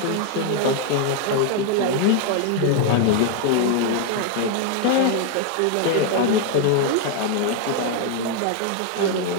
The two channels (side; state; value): both; different; correlation 0.00